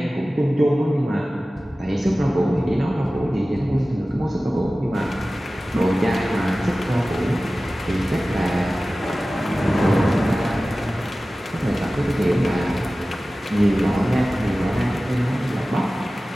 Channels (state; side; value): normal; both; correlation 0.96